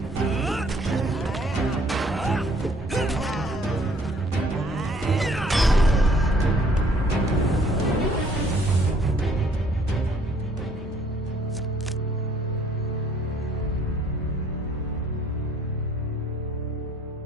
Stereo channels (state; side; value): normal; both; correlation 0.61